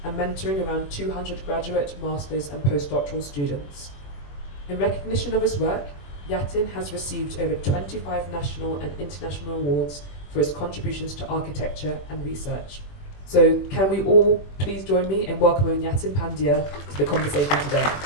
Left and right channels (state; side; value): late; right; 21 ms